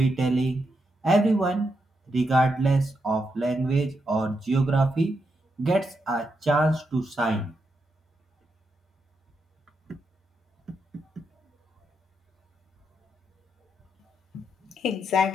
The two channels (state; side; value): normal; both; correlation 0.83